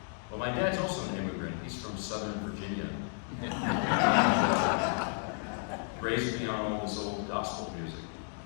Well, my dad's also an immigrant. He's from Southern Virginia. Raised me on all this old gospel music.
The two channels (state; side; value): silent; right; 56 dB below the other